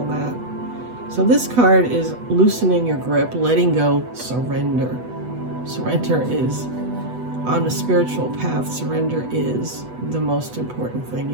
that. So this card is loosening your grip, letting go, surrender. Surrender is, on a spiritual path, surrender is the most important thing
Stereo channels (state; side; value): late; left; 8.1 ms